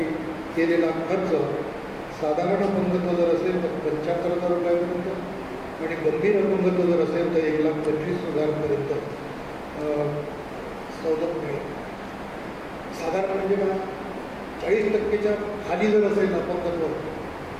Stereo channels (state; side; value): identical; both; correlation 1.00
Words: केलेला खर्च साधारण अपंगत्व जर असेल तर 75,000 रुपयापर्यंत आणि गंभीर अपंगत्व जर असेल तर 1,25,000पर्यंत सवलत मिळेल. साधारण म्हणजे का 40% खाली जर असेल अपंगत्व